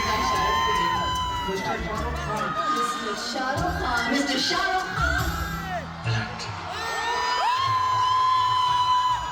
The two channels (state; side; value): identical; both; correlation 1.00